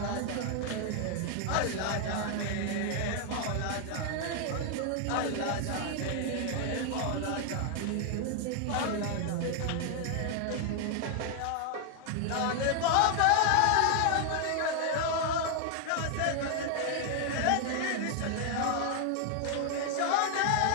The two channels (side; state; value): both; different; correlation 0.00